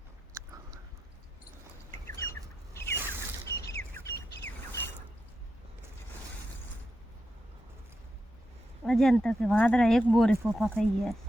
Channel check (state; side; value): normal; both; correlation 0.87